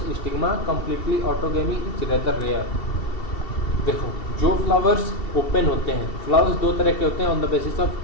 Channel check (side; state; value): right; late; 2.7 ms